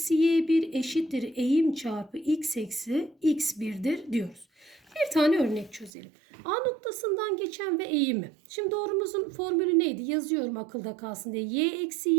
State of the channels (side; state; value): left; drops out; at 5.9 s